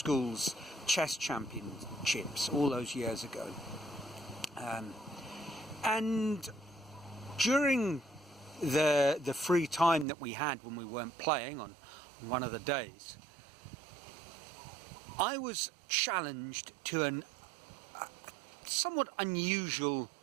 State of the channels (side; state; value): left; drops out; at 10.1 s